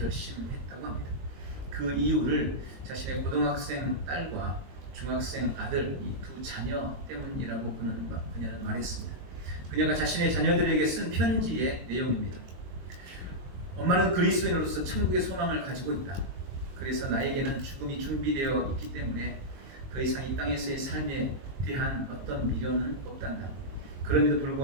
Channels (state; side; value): late; left; 22 ms